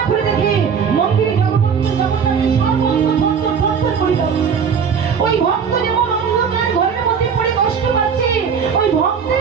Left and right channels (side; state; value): left; quieter; 6.6 dB